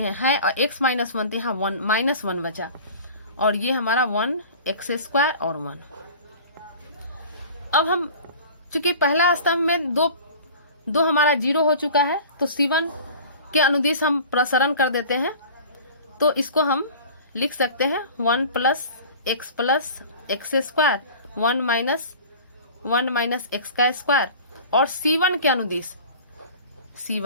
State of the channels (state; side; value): inverted; both; correlation -0.41